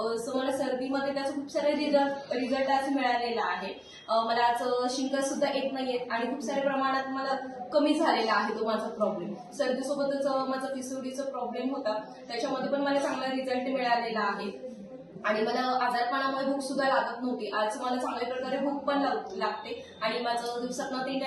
मला सर्दीमध्ये त्याचा खूप सारे रिझल्ट आज मिळालेला आहे. मला आज शिंका सुद्धा येत नाहीये आणि खूप साऱ्या प्रमाणात मला कमी झालेला आहे तो माझा प्रॉब्लेम. सर्दीसोबतच माझा पिसोडीचा प्रॉब्लेम होता, त्याच्यामध्ये पण मला चांगला रिझल्ट मिळालेला आहे आणि मला आजारपणामुळे भूक सुद्धा लागत नव्हती. आज मला चांगल्या प्रकारे भूक पण लागते आणि माझं दिवसातनं 3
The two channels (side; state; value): both; identical; correlation 1.00